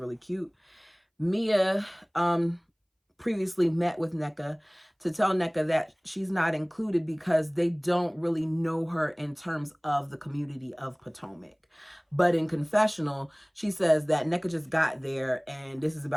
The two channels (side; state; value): both; identical; correlation 1.00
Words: cute. Mia previously met with NECA to tell NECA that she's not included because they don't really know her in terms of the community of Potomac. But in confessional, she says that NECA just got there and this is